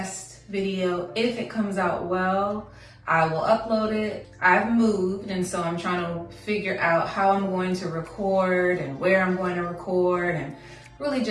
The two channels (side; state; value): both; identical; correlation 1.00